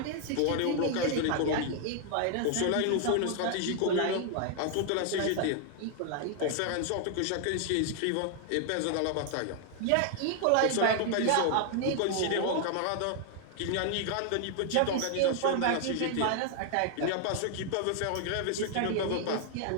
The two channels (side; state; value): both; different; correlation 0.00